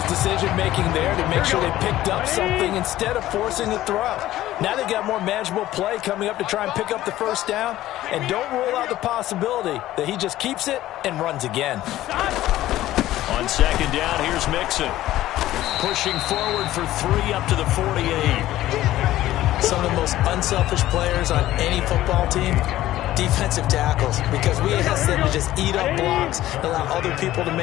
decision-making there to make sure they picked up something instead of forcing the throw. Now they've got more manageable play coming up to try and pick up the 1st down. And don't rule out the possibility that he just keeps it and runs again. On 2nd down, here's Mixon. Pushing forward for 3 up to the 48. Some of the most unselfish players on any football team defensive tackles, because we ask them to just eat up blocks and allow other people to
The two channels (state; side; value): quieter; right; 14.7 dB